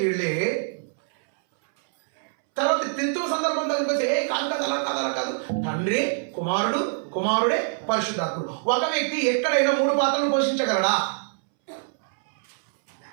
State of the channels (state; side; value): silent; left; 62 dB below the other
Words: వీళ్ళే. తర్వాత త్రిత్వం సందర్భం దగ్గరికి కాదు అలా కాదు, తండ్రి, కుమారుడే పరిశుద్ధాత్ముడు. ఒక వ్యక్తి ఎక్కడైనా 3 పాత్రలు పోషించగలడా?